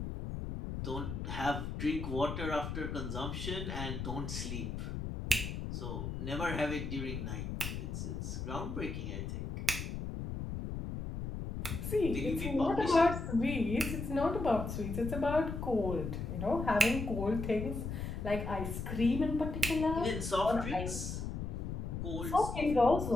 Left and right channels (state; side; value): noise; left; rumble, 4 dB below the sound